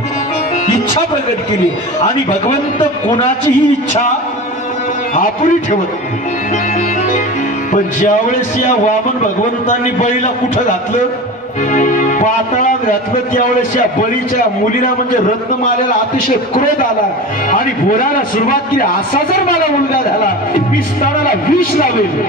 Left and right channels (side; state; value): both; normal; correlation 0.31